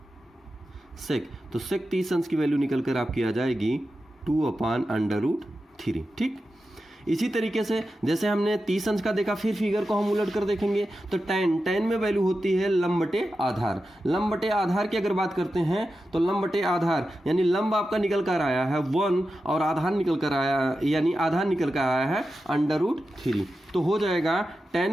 सेक, तो सेक 30 अंश की वैल्यू निकल कर आपकी आ जाएगी 2/√3, ठीक। इसी तरीके से जैसे हमने 30 अंश का देखा, फिर फिगर को हम उलट कर देखेंगे तो tan में वैल्यू होती है लंब बटे आधार। लंब बटे आधार की अगर बात करते हैं तो लंब बटे आधार यानी लंब आपका निकल कर आया है 1 और आधार निकल कर आया, यानी आधार निकल कर आया है √3, तो हो जाएगा tan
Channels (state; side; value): normal; both; correlation 0.91